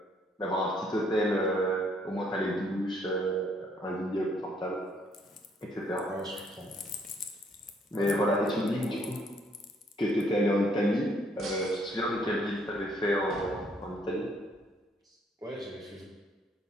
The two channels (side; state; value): both; normal; correlation 0.67